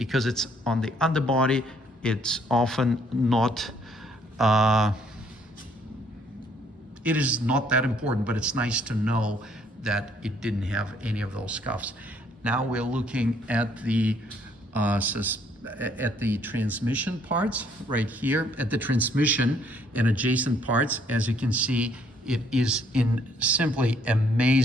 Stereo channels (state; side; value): normal; both; correlation 0.65